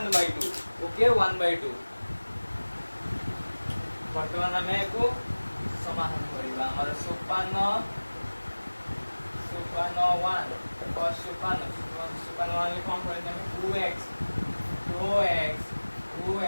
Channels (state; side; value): inverted; both; correlation -1.00